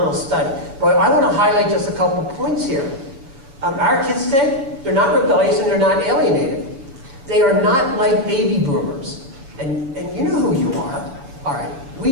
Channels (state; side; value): late; left; 7.1 ms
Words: study. But I want to highlight just a couple of points here. Our kids today, they're not rebellious and they're not alienated. They are not like baby boomers. And you know who you are. All right,